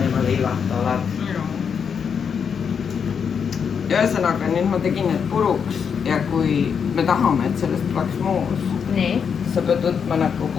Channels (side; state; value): right; quieter; 6.8 dB